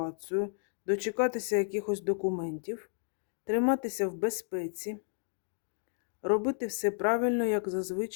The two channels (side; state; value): right; silent; digital silence